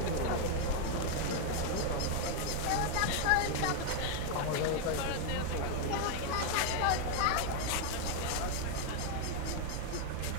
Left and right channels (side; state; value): both; different; correlation 0.01